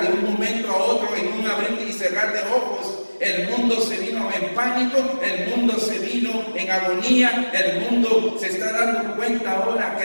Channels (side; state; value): both; inverted; correlation -1.00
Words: un momento a otro, en un abrir y cerrar de ojos, el mundo se vino en pánico, el mundo se vino en agonía, el mundo se está dando cuenta ahora